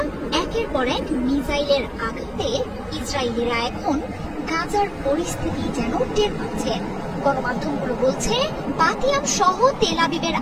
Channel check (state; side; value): identical; both; correlation 1.00